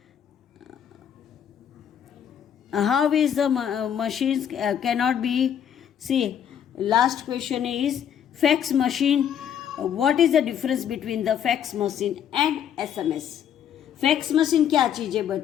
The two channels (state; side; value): quieter; right; 9.1 dB